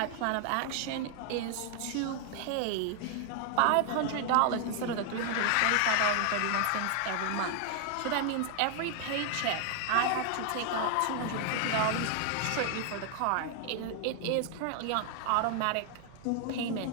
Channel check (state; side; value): different; both; correlation 0.00